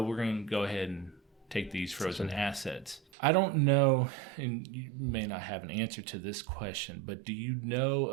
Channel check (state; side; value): drops out; left; at 3.0 s